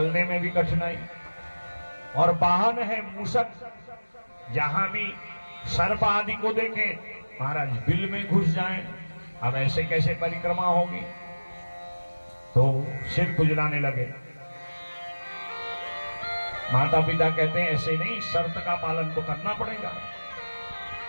में भी कठिनाई। और वाहन है मूषक। जहां भी सर्प आदि को देखें महाराज बिल में घुस जाएं। अब ऐसे कैसे परिक्रमा होगी। तो सिर खुजलाने लगे। माता पिता कहते हैं ऐसे नहीं, शर्त का पालन तो करना पड़ेगा।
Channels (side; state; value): both; inverted; correlation -1.00